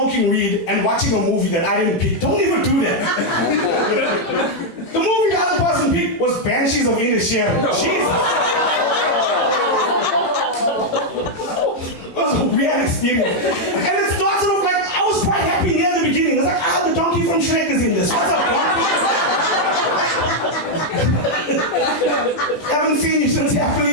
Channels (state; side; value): late; right; 18 ms